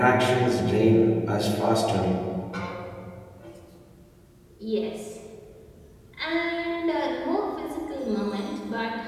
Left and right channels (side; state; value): both; identical; correlation 1.00